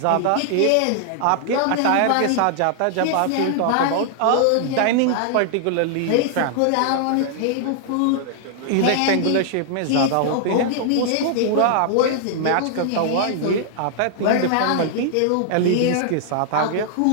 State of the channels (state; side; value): different; both; correlation -0.01